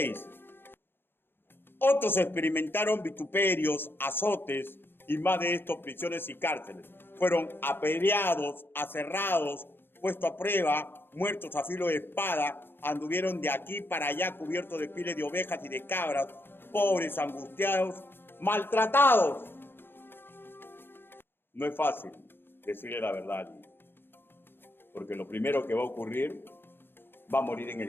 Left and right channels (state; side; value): late; right; 0.10 ms